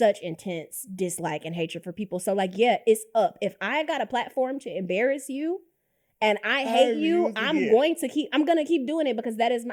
intense dislike and hatred for people. So like, yeah, it's up. If I got a platform to embarrass you and I hate you, I'm gonna keep doing it because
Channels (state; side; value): identical; both; correlation 1.00